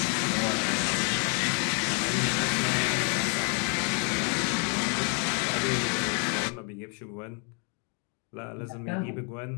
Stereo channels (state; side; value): quieter; right; 39.5 dB